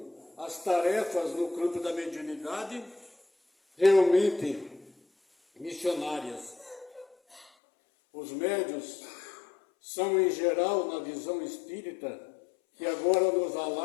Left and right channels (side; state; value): right; drops out; at 7.5 s